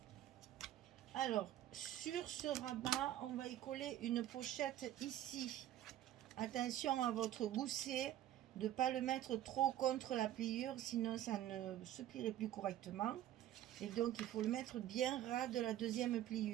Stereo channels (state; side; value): quieter; left; 12.6 dB